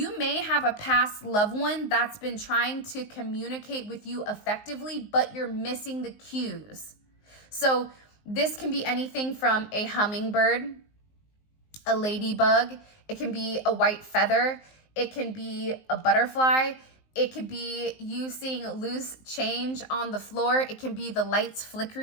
may have a past loved one that's been trying to communicate with you effectively, but you're missing the cues. So this can be anything from a hummingbird, a ladybug, it can be a white feather, it can be a butterfly, it could be you seeing loose change on the floor, it can be the lights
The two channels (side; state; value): right; late; 19 ms